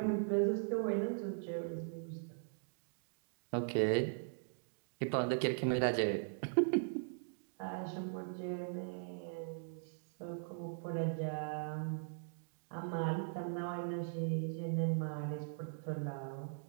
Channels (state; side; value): silent; left; digital silence